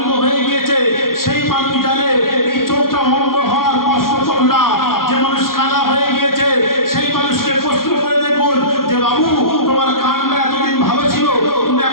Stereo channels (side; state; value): right; late; 0.92 ms